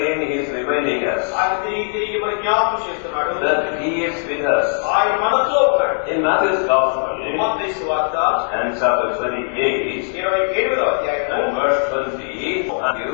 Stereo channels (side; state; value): right; silent; 66 dB below the other